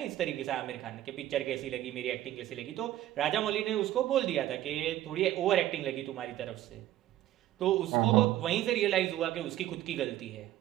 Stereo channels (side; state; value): left; quieter; 13.7 dB